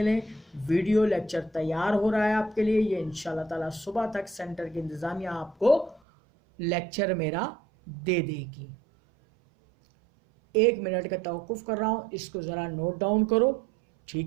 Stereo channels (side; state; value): left; drops out; at 6.0 s